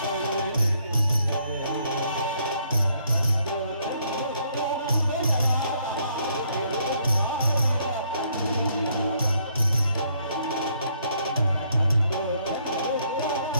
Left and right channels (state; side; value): inverted; both; correlation -0.69